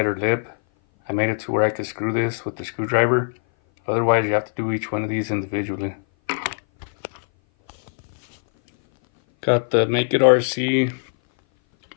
lip, I made it to where I could screw this with the screwdriver. Otherwise, you have to do each one of these individually. Got the Make It RC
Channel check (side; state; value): right; silent; 58 dB below the other